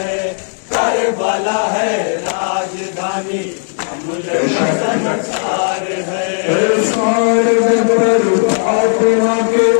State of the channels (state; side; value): silent; right; digital silence